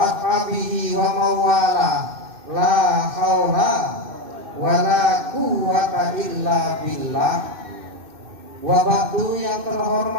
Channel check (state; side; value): late; left; 2.6 ms